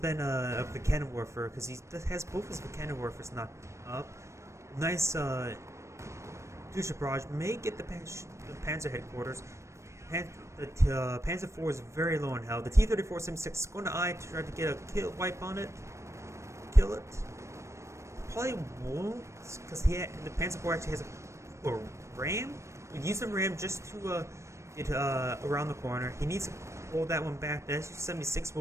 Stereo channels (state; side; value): late; left; 0.14 ms